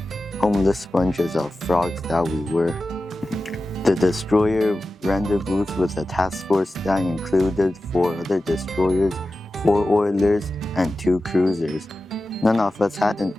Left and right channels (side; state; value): both; normal; correlation 0.94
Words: homeless sponges of frogs that we were. The destroyer rendezvoused with a task force that included 4 other destroyers, 4 oilers, and 2 cruisers. None of us had